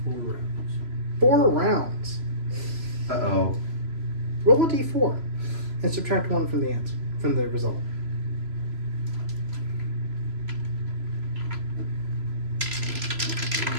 4 rounds. 4 rounds. Uh-oh. Roll a d4 and subtract 1 from the answer, from the result.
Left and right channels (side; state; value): left; late; 3.0 ms